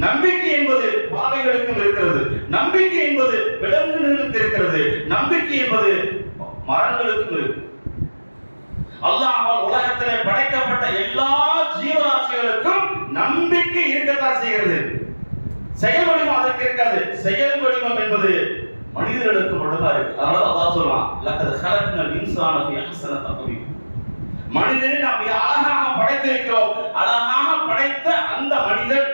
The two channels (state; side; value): inverted; both; correlation -1.00